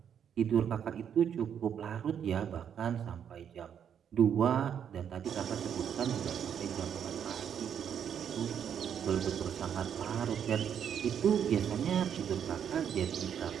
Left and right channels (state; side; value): quieter; left; 8.5 dB